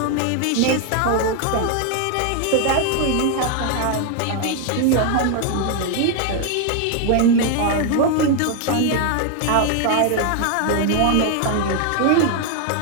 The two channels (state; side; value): different; both; correlation 0.00